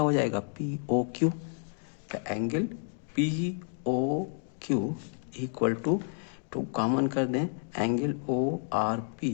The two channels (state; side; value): silent; right; 58 dB below the other